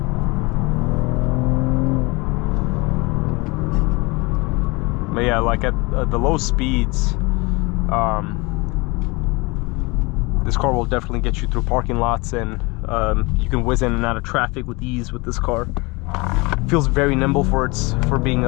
But yeah, like at the low speeds, this car will definitely get you through parking lots, and you can whiz in and out of traffic with ease with this car. It feels very nimble for being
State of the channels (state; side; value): quieter; right; 25.8 dB